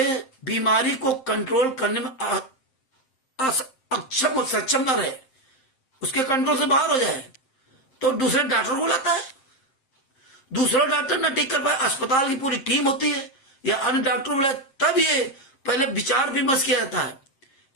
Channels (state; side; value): late; right; 7.6 ms